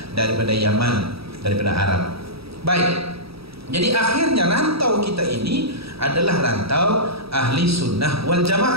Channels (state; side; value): late; left; 0.77 ms